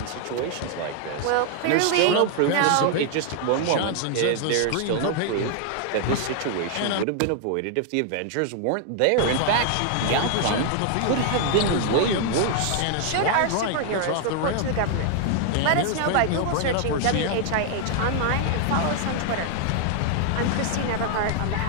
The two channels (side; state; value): both; different; correlation 0.00